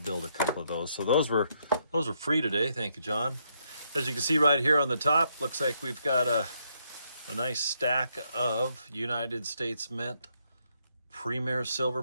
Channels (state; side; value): inverted; both; correlation -0.76